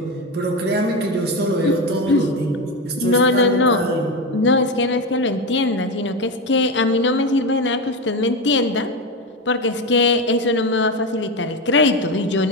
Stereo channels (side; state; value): both; normal; correlation 0.16